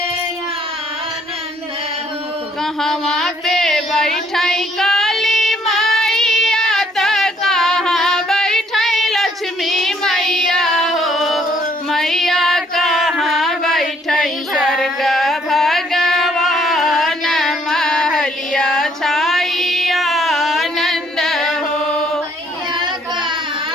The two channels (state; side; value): normal; both; correlation 0.66